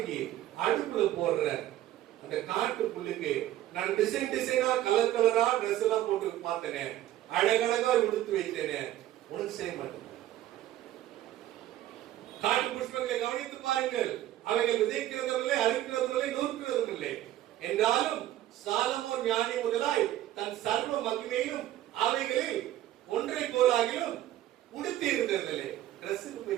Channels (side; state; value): left; quieter; 13.6 dB